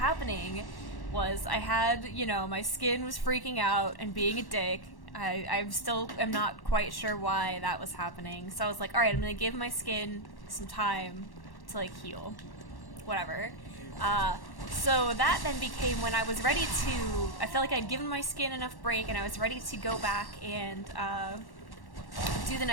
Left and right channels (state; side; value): late; right; 1.1 ms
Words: was I had, my skin was freaking out and being a dick. I still am not quite sure why that was happening. So I was like, all right, I'm going to give my skin some time to, heal. Whatever. So that then became when I was ready to, I felt like I'd given my skin enough break and I was ready to go back and do the